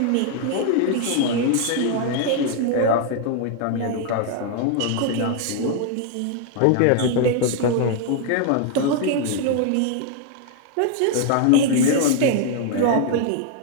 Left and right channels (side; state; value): both; different; correlation 0.00